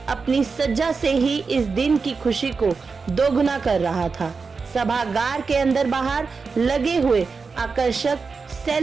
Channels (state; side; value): quieter; left; 4.8 dB